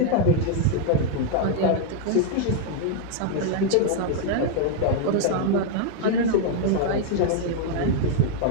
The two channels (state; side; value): different; both; correlation 0.00